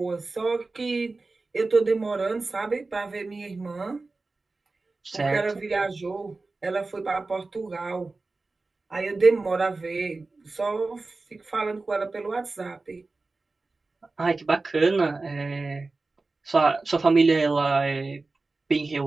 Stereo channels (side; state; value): left; quieter; 3.6 dB